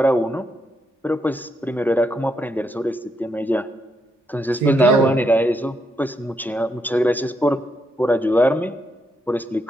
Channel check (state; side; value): normal; both; correlation 0.79